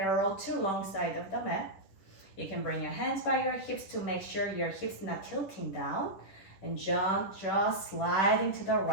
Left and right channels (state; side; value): late; right; 10 ms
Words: to long side of the mat. You can bring your hands by your hips to make sure your hips not tilting down. And just sliding to the